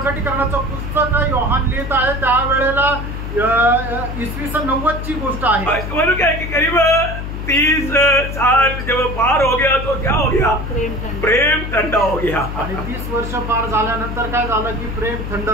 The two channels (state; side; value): noise; left; hum, 6 dB below the sound